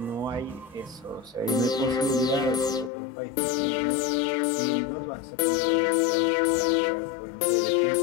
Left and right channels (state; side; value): drops out; right; at 2.9 s